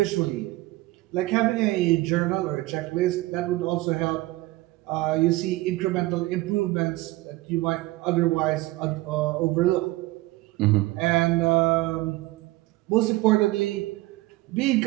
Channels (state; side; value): quieter; left; 19.3 dB